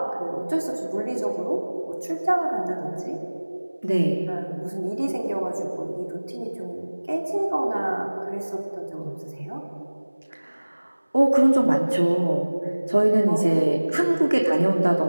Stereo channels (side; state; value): both; inverted; correlation -1.00